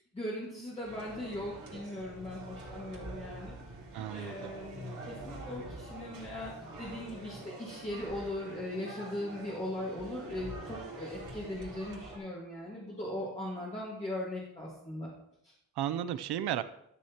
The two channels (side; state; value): both; normal; correlation 0.45